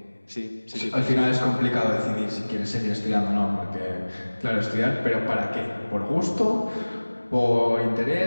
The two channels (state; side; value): inverted; both; correlation -1.00